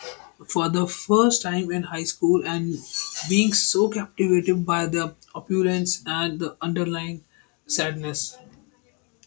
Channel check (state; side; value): quieter; right; 33.0 dB